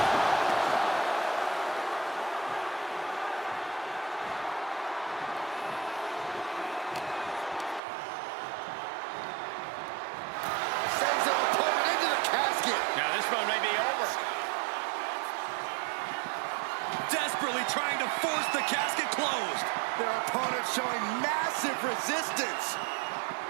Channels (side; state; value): left; drops out; at 7.8 s